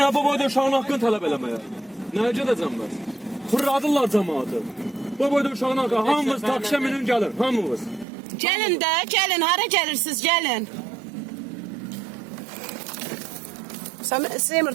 bu boyda uşağın hakkını talep eləməyə? Nəyəcə edəcəm mən? Fırladırlar cəmaatı. Bu boyda uşağın hakkı hamımız taksiyə minin gəlin, hamımız. Gelin de gelin hara gelirsiniz gelin. Sen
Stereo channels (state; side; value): drops out; left; at 8.1 s